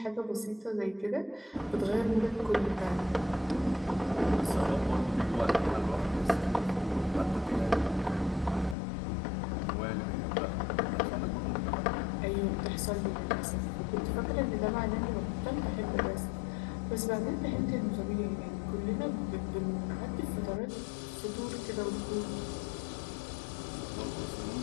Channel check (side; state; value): right; drops out; at 8.8 s